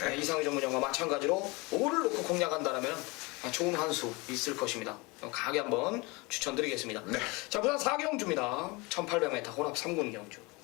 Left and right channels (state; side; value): quieter; right; 25.9 dB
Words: 이상의 전문형과 마찬가지로 5를 놓고 공략한다면 좋은 한 수 있을 것입니다. 강하게 한번 추천드리겠습니다. 네. 자, 부산 4경주입니다. 1800m 혼합 3군 경주.